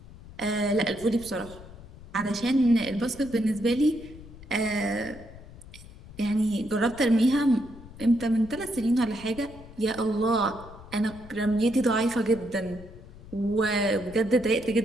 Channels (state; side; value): noise; left; rumble, 18 dB below the sound